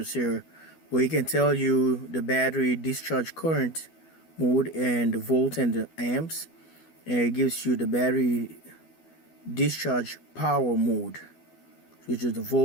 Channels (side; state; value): right; late; 12 ms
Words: here, where it can tell you the battery discharge current mode and the volt and the amps, and it gives you the battery discharge power mode, which is the